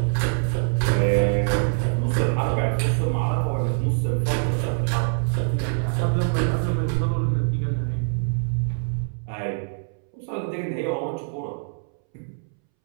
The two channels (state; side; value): silent; left; 62 dB below the other